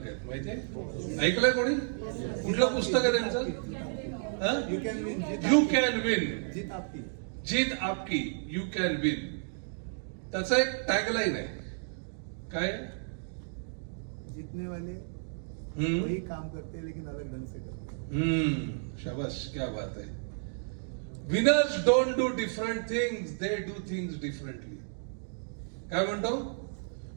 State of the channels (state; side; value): silent; left; digital silence